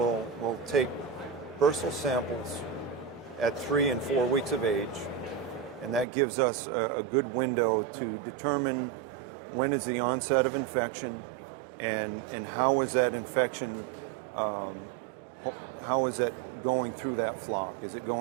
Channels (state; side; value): drops out; left; at 6.1 s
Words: take bursal samples at 3 and 4 weeks of age, and that gives us a good window to determine when is the onset of infection and how is that infection, how is it going through that flock? Is it